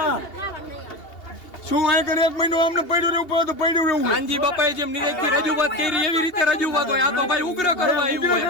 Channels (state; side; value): late; right; 2.8 ms